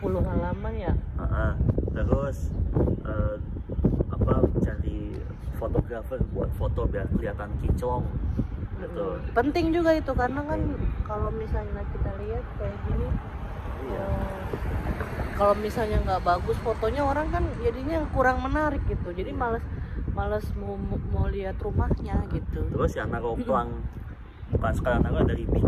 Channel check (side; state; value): both; identical; correlation 1.00